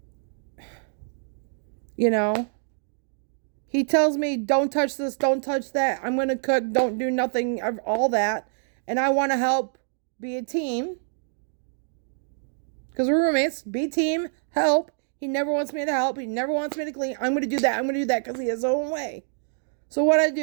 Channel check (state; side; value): silent; left; digital silence